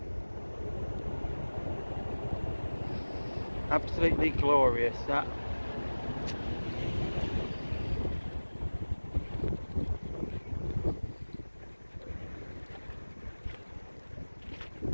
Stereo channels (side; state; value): both; inverted; correlation -1.00